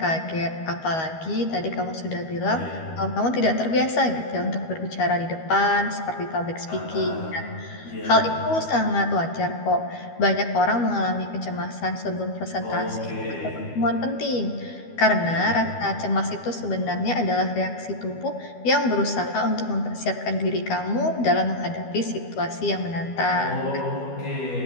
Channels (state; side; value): late; right; 12 ms